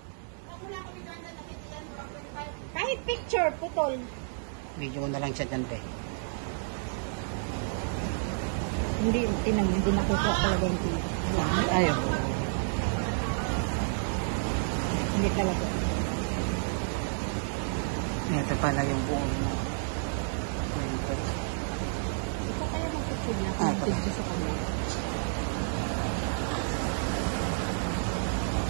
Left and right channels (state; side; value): silent; left; digital silence